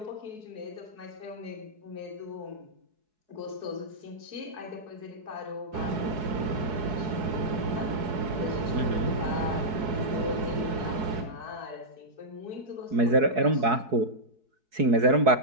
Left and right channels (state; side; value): late; left; 4.7 ms